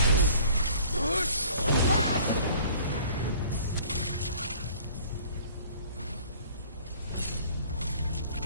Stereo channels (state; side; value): inverted; both; correlation -0.52